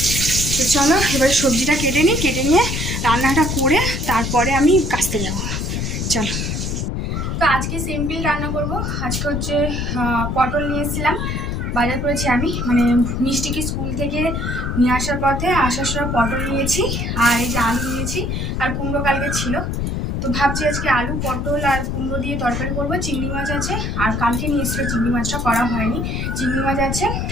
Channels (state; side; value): noise; left; rumble, 2 dB below the sound